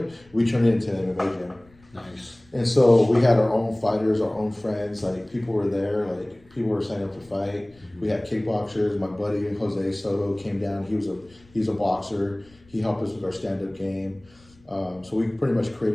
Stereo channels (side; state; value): left; noise; rumble, 29 dB below the sound